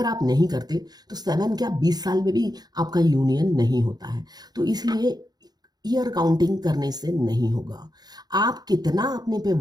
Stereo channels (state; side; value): late; left; 0.19 ms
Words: आप नहीं करते तो 7 क्या 20 साल में भी आपका यूनियन नहीं होता है। तो इसलिए ईयर काउंटिंग करने से नहीं होगा, आप कितना अपने पे